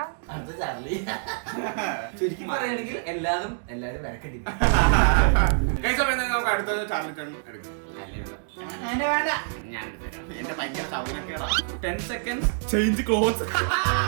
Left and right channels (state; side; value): silent; left; digital silence